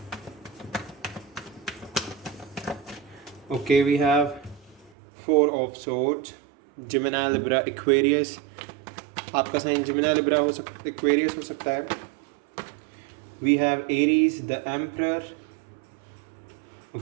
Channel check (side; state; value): left; drops out; at 4.9 s